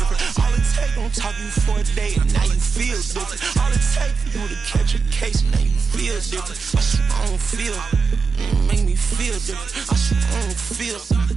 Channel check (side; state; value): left; quieter; 5.0 dB